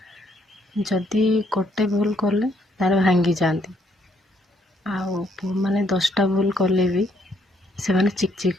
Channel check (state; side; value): normal; both; correlation 0.70